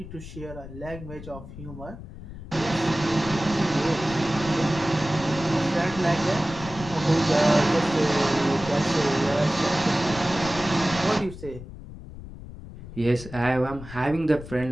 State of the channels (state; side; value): noise; left; rumble, 13 dB below the sound